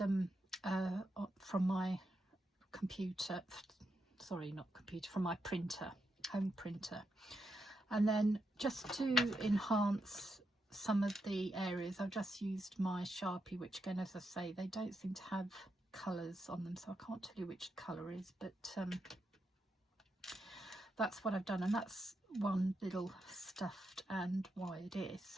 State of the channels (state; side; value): normal; both; correlation 0.83